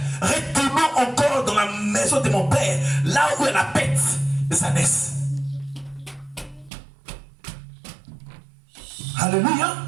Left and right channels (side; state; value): left; drops out; at 6.7 s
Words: retournons encore dans la maison de mon père, là où est la bête de sa naisse. Alléluia.